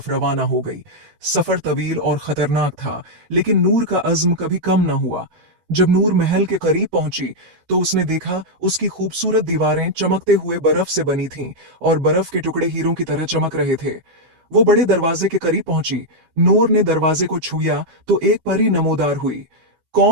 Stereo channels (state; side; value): late; left; 12 ms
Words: रवाना हो गई। सफर तवील और खतरनाक था, लेकिन नूर का अज़्म कभी कम न हुआ। जब नूर महल के करीब पहुंची, तो उसने देखा उसकी खूबसूरत दीवारें चमकते हुए बर्फ से बनी थीं और बर्फ के टुकड़े हीरों की तरह चमक रहे थे। वो बड़े दरवाजे के करीब पहुंची। नूर ने दरवाजे को छुआ तो एक परी नमोदार हुई।